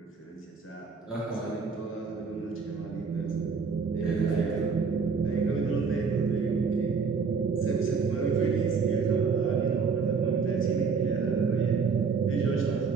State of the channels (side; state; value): left; quieter; 5.3 dB